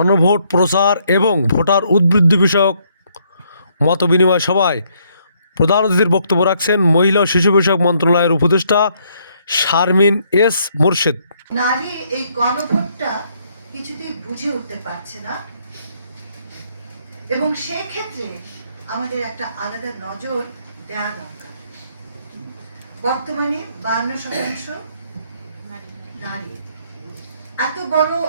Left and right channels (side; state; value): both; inverted; correlation -0.70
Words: প্রচার এবং ভোটার উদ্বৃত্তি বিষয়ক মতবিনিময় সভায় প্রধান অতিথির বক্তব্য রাখছেন মহিলা ও শিশু বিষয়ক মন্ত্রণালয়ের উপদেষ্টা শারমিন এস মোরশেদ। নারী এই গণভোটটা কিছুতেই বুঝে উঠতে পারছে না এবং সেক্ষেত্রে আমাদের একটা আলাদা নজর দেওয়া দরকার। বর্তমানে 52% নারী, এত বড়